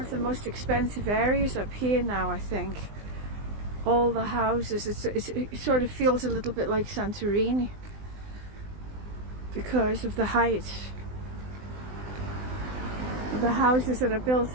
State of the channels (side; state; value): left; late; 20 ms